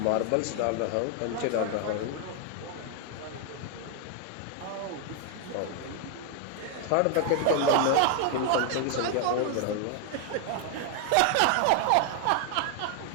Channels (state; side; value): different; both; correlation 0.00